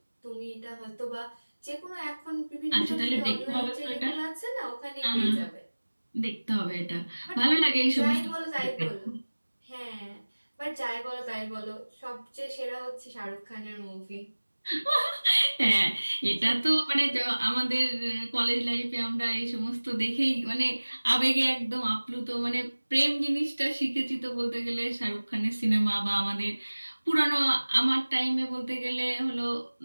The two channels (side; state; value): both; inverted; correlation -1.00